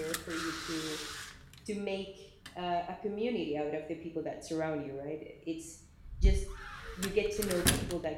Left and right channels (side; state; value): both; identical; correlation 1.00